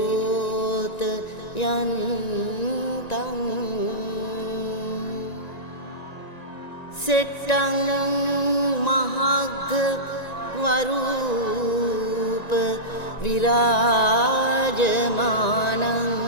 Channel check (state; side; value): late; right; 1.9 ms